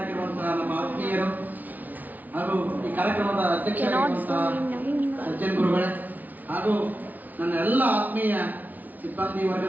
ನಮ್ಮ ಆತ್ಮೀಯರು ಹಾಗೂ ಈ ಕಾರ್ಯಕ್ರಮದ ಅಧ್ಯಕ್ಷರಾಗಿರುವಂತಹ ಸಜ್ಜನ್ ಗುರುಗಳೇ ಹಾಗೂ ನನ್ನ ಎಲ್ಲ ಆತ್ಮೀಯ ಸಿಬ್ಬಂದಿ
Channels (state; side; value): late; left; 0.080 ms